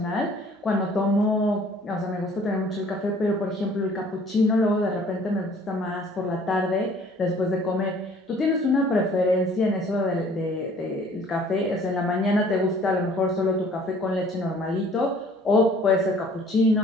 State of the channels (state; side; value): normal; both; correlation 0.54